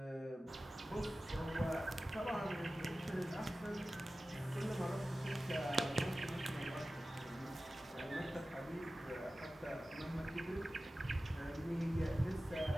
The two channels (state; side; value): normal; both; correlation 0.95